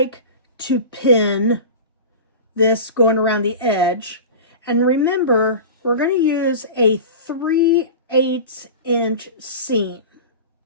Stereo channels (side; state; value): both; inverted; correlation -0.32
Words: to pin this going around the edge. And remember, we're going to use a 3/8 inch seam.